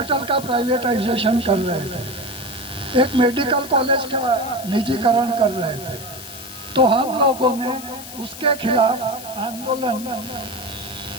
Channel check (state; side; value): noise; left; hiss, 13 dB below the sound